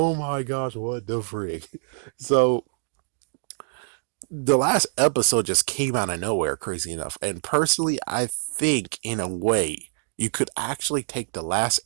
my gosh, what the frick? So the last episode just came out of nowhere, crazy enough. And personally, I think in a way you could actually take the last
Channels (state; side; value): silent; left; digital silence